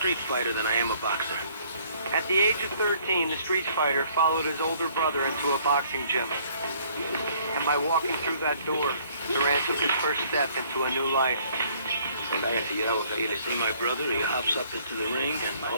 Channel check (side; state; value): both; inverted; correlation -0.61